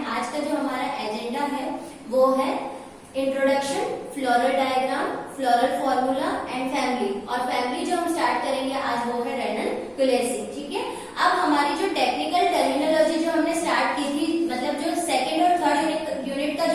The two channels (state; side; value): identical; both; correlation 1.00